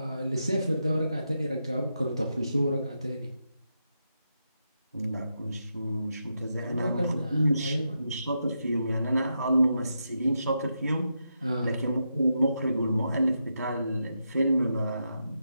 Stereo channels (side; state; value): both; inverted; correlation -0.85